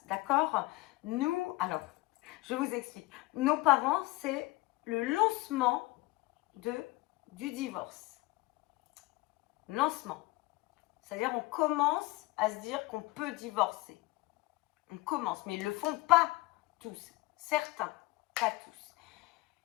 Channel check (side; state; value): right; quieter; 21.0 dB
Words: d'accord? Nous, alors, je vous explique. Nos parents, c'est le lancement du divorce. Lancement. C'est-à-dire on commence à se dire qu'on peut divorcer. On commence, mais ils ne le font pas tous. Certains, pas tous.